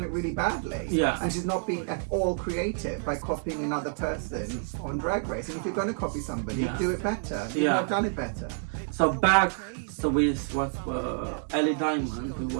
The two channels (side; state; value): left; silent; 59 dB below the other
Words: it really badly. Yeah. And she's not being at all creative by copying another person on Drag Race. And if you're going to copy somebody, do it better. You've not done it better. So back, so with what Ellie Diamond, who